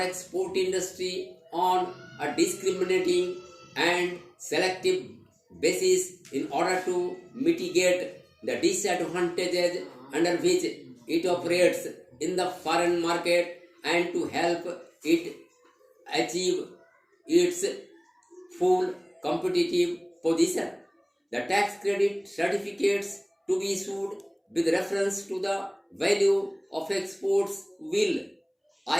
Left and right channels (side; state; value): both; identical; correlation 1.00